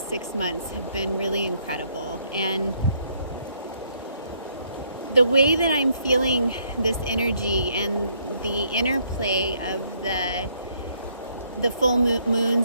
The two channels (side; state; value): both; inverted; correlation -0.69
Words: 6 months have been really incredible. And the way that I'm feeling this energy and the interplay of the full